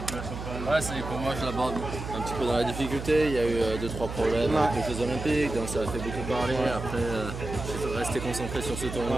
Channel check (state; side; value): noise; right; hum, 7 dB below the sound